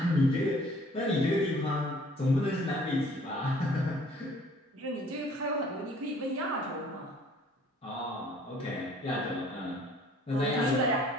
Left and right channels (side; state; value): both; normal; correlation 0.55